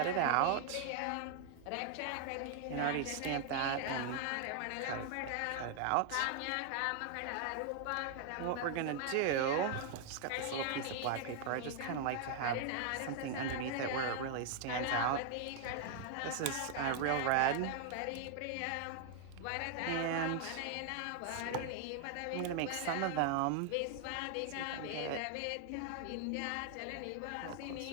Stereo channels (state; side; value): different; both; correlation 0.00